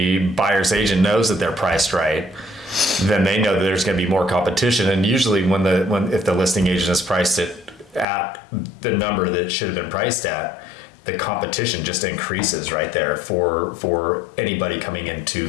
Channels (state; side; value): drops out; right; at 8.1 s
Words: buyer's agent knows that they're priced right, then they know that there's going to be more competition. And usually if the listing agent has priced it at the number that it should have been priced at, the competition just increases right there for anybody coming in